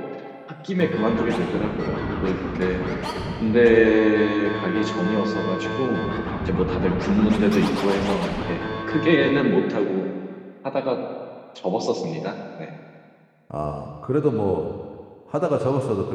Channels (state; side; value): identical; both; correlation 1.00